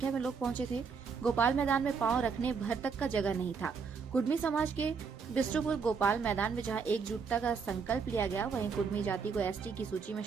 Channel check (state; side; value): quieter; left; 5.6 dB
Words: में लोग पहुंचे थे। गोपाल मैदान में पांव रखने भर तक का जगह नहीं था। कुर्मी समाज के बिष्ट्रपुर गोपाल मैदान में जहां एकजुटता का संकल्प लिया गया, वहीं कुर्मी जाति को एसटी की सूची में